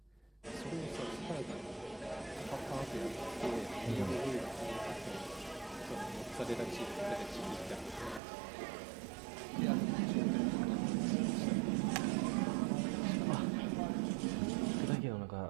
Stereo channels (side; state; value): left; drops out; at 8.2 s